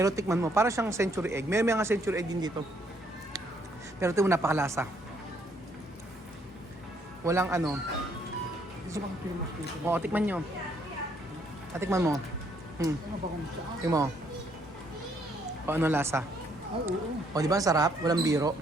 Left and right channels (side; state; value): both; normal; correlation 0.69